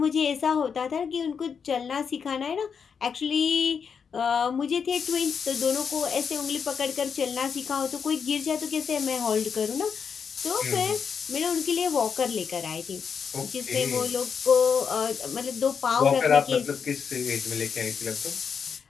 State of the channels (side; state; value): right; quieter; 6.5 dB